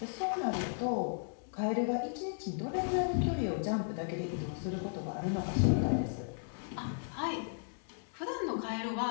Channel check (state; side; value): silent; right; digital silence